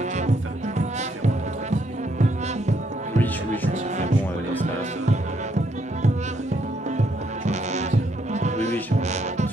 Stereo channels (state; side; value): normal; both; correlation 0.73